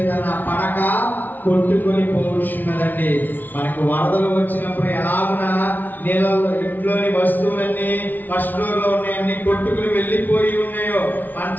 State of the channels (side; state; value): right; late; 0.084 ms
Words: నా పడక కొట్టుకొని పోవుచున్నదండి. మనకు వరదలు వచ్చినప్పుడు ఎలాగున నీళ్ళలో ఇంట్లోని వస్తువులన్నీ ఫస్ట్ ఫ్లోర్ లో ఉన్నాయన్నీ కొట్టుకుని వెళ్ళిపోయి ఉన్నాయో,